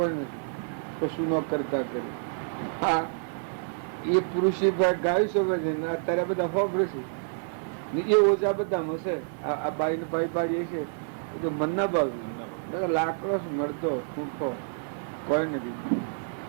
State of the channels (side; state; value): left; silent; 59 dB below the other